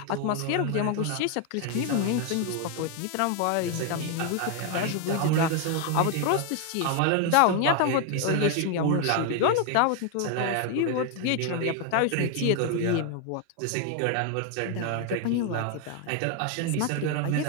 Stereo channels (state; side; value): different; both; correlation 0.01